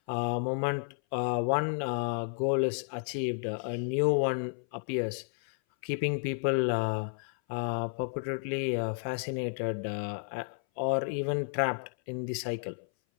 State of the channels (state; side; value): silent; right; 57 dB below the other